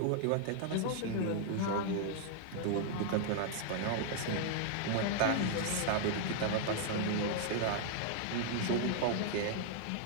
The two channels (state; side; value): different; both; correlation 0.00